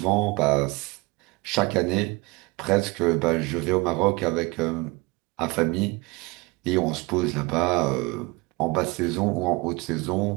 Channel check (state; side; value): quieter; left; 24.9 dB